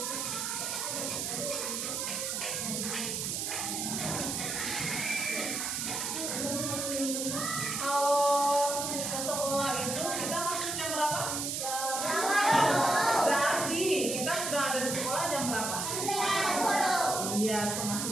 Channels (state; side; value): noise; right; hiss, 2 dB below the sound